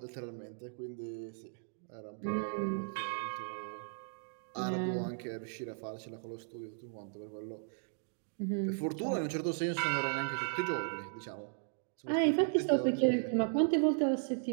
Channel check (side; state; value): left; silent; digital silence